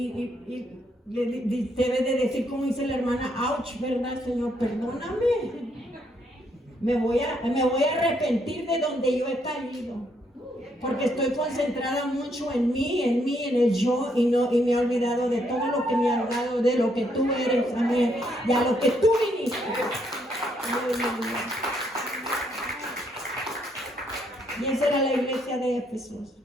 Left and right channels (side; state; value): both; normal; correlation 0.73